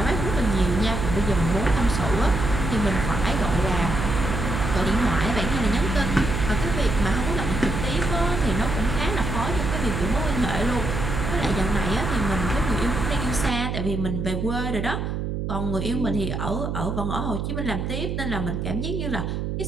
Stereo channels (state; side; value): noise; right; hum, 2 dB below the sound